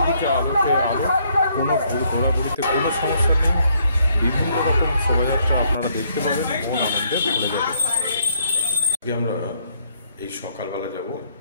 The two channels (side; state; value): both; inverted; correlation -0.70